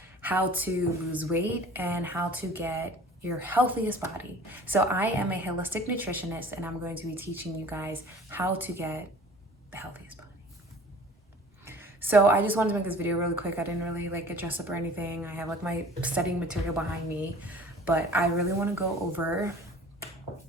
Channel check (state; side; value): normal; both; correlation 0.46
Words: how to lose weight and how to get your healthiest body. So I am a holistic nutritionist and I'm going to be teaching you guys how to get the healthiest body. So I just wanted to make this video really quick. I didn't really get dressed up or anything. I have my studying material behind me, but I really want to go over